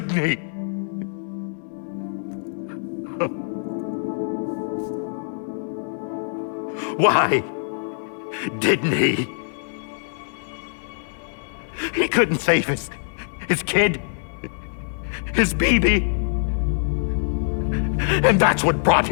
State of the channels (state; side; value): silent; right; digital silence